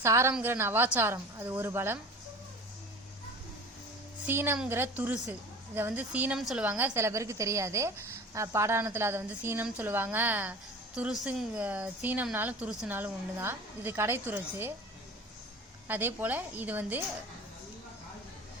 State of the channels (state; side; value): normal; both; correlation 0.38